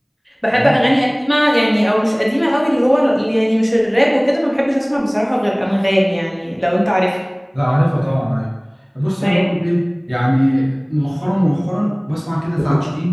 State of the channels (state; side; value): identical; both; correlation 1.00